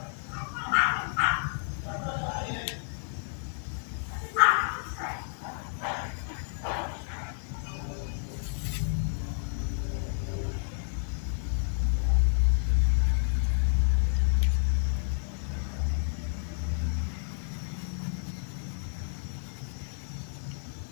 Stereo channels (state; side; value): silent; right; 58 dB below the other